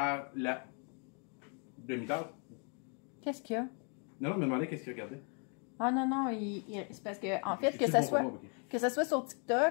la demi-tasse. Qu'est-ce qu'il y a? Non, me demandais qu'est-ce qu'il regardait. Ah non, c'est parce que, en fait, que ça soit sur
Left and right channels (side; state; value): right; quieter; 39.6 dB